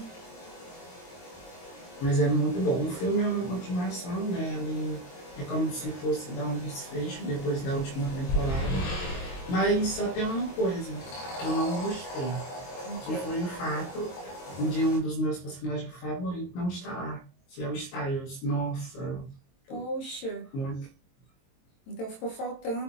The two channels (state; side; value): late; right; 22 ms